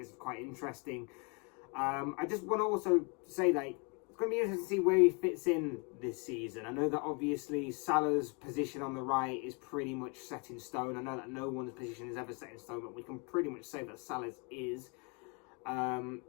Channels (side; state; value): right; quieter; 33.4 dB